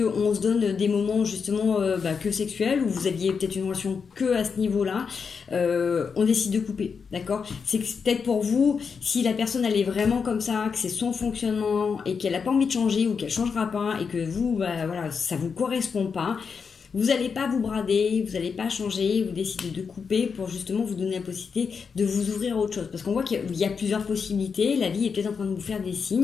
se donne des moments justement que sexuels, où vous aviez peut-être une relation que à ce niveau-là, on décide de couper, d'accord? C'est peut-être pour vous, si la personne elle est vraiment comme ça, que c'est son fonctionnement et qu'elle n'a pas envie de changer ou qu'elle changera pas et que vous, voilà, ça vous correspond pas, vous n'allez pas vous brader, vous n'allez pas changer, vous décidez de couper pour justement vous donner la possibilité de vous ouvrir à autre chose. Parce qu'on voit qu'il y a plusieurs possibilités, la vie est peut-être en train de vous faire des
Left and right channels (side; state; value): right; quieter; 5.8 dB